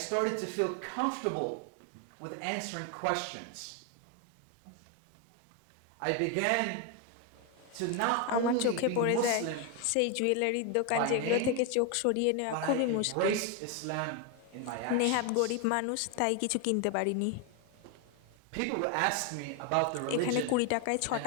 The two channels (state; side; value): different; both; correlation 0.01